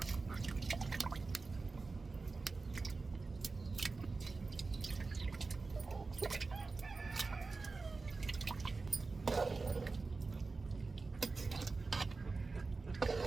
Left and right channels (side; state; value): left; quieter; 3.9 dB